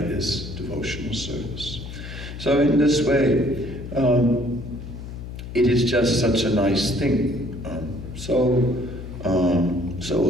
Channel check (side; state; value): left; noise; hum, 10 dB below the sound